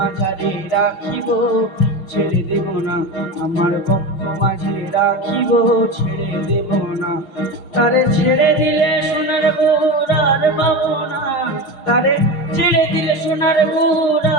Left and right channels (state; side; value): late; right; 6.4 ms